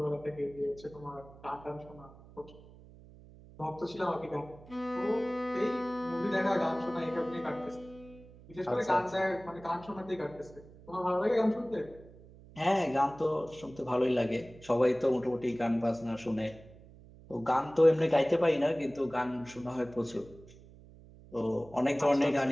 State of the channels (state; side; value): noise; right; hum, 21 dB below the sound